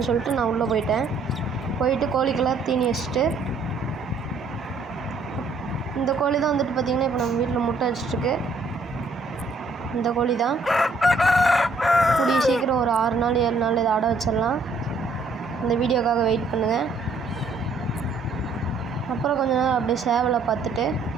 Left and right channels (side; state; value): left; quieter; 3.4 dB